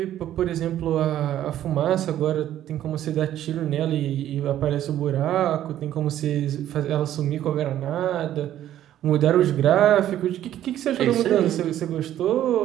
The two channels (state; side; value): quieter; left; 12.0 dB